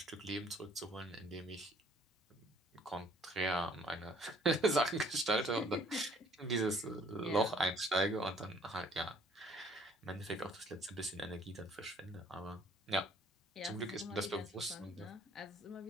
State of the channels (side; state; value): both; normal; correlation 0.59